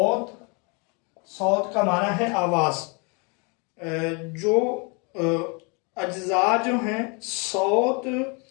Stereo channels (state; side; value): quieter; right; 32.3 dB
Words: کا معنی ہے آواز، جو اجزاء جو ہیں صوت